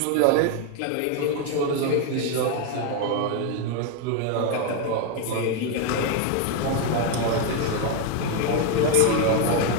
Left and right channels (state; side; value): different; both; correlation 0.01